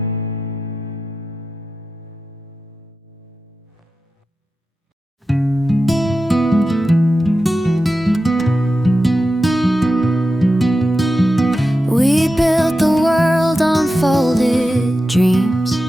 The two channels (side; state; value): both; normal; correlation 0.92